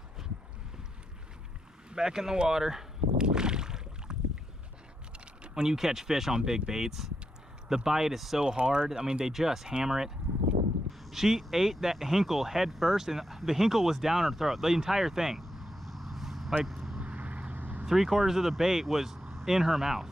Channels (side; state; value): both; normal; correlation 0.83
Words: Back in the water. When you catch fish on big baits, the bite is so hard. I mean, they just hammer it. She ate that hinkle head first, and the hinkle was down her throat, the entire thing. Like 3/4 of the bait was in her mouth.